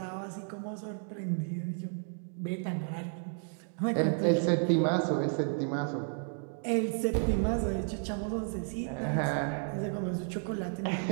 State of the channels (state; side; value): silent; left; 56 dB below the other